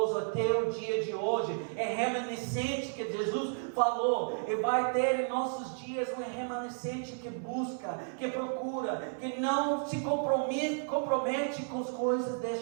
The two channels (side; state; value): left; silent; 56 dB below the other